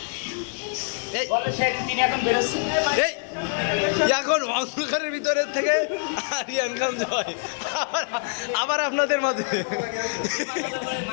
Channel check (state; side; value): silent; right; 62 dB below the other